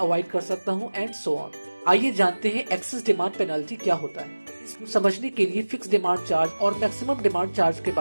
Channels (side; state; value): both; inverted; correlation -1.00